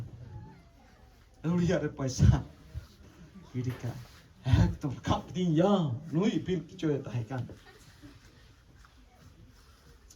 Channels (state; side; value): identical; both; correlation 1.00